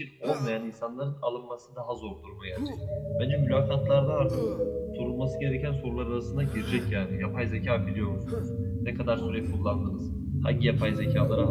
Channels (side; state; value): both; identical; correlation 1.00